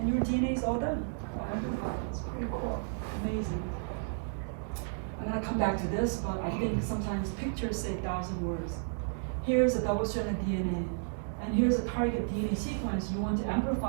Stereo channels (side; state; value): left; silent; digital silence